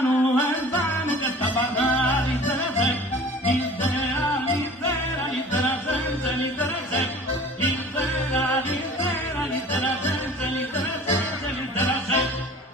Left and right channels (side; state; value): both; normal; correlation 0.44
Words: vano que está parrando.